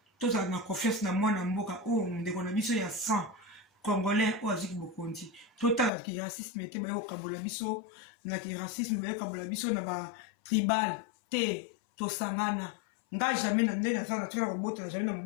To za na confiance na mwana mboka o ndeko na biso ya 100 Congolais o aziki bokonti. Total ki racisme te ba yo kabola biso na ki racisme ba yo kabola biso na ba tribal te to sangana. Nga jamais na ndena za na tira robota na jamais na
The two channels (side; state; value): right; drops out; at 5.9 s